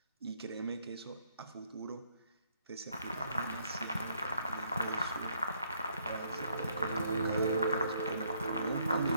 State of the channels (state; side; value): inverted; both; correlation -0.69